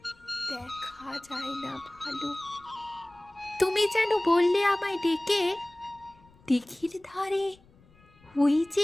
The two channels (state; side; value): noise; left; rumble, 28 dB below the sound